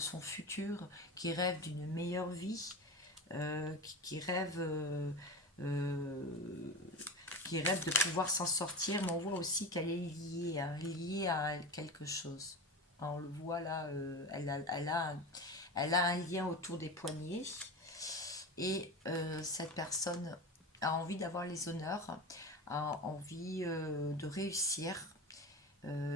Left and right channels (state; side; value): normal; both; correlation 0.27